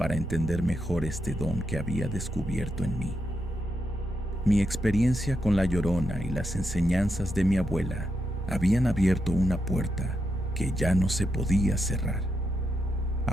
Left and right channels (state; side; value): normal; both; correlation 0.84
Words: entender mejor este don que había descubierto en mí. Mi experiencia con la Llorona y las enseñanzas de mi abuela habían abierto una puerta que ya no se podía cerrar.